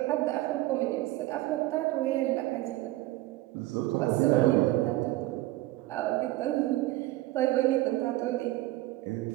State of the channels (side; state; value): left; quieter; 17.5 dB